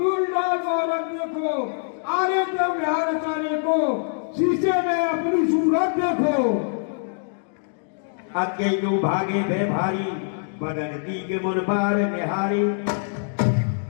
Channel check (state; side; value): silent; right; digital silence